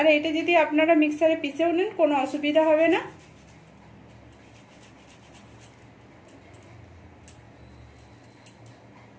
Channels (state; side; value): identical; both; correlation 1.00